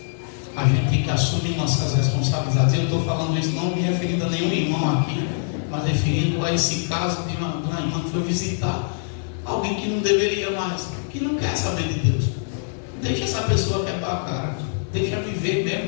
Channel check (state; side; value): silent; right; digital silence